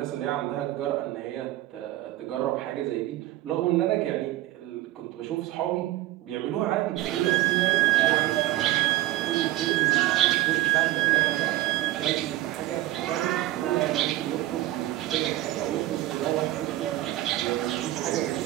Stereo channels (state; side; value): quieter; left; 15.8 dB